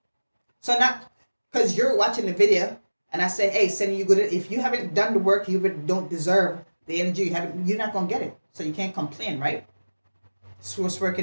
So not because you're watching the video and I say, hey, send you good. If you haven't done the work, you don't deserve the energy. You're not going to get it. So you can't complain, right? Source work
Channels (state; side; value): inverted; both; correlation -1.00